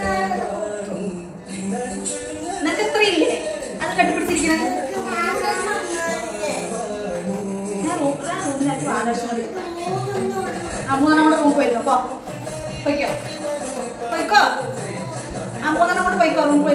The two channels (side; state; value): both; identical; correlation 1.00